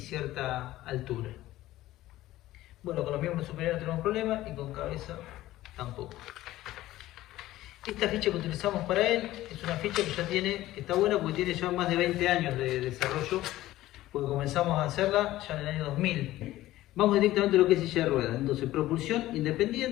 cierta altura. Bueno, con los miembros superiores no tenemos problema y con cabeza tampoco. Esta ficha que utilizamos para él es una ficha que ya tiene, que está buena porque tiene ya más de 20 años de desarrollo, porque comenzamos a hacerla ya en el año 2000. Vamos directamente a lo que es silla de ruedas. Entonces, propulsión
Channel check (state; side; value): quieter; right; 15.7 dB